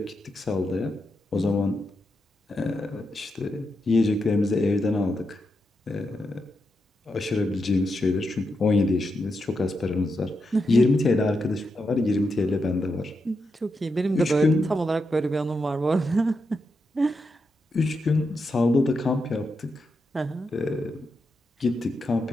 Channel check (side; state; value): both; normal; correlation 0.85